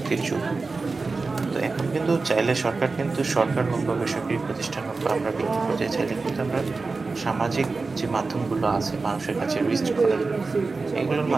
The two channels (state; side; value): quieter; left; 4.0 dB